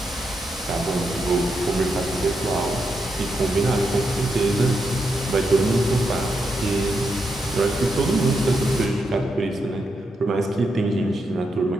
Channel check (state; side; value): normal; both; correlation 0.83